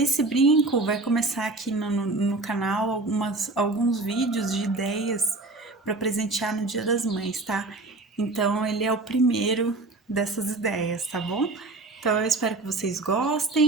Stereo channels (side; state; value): left; quieter; 3.2 dB